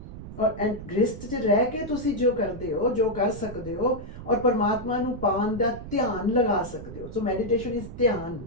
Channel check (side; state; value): right; noise; rumble, 12 dB below the sound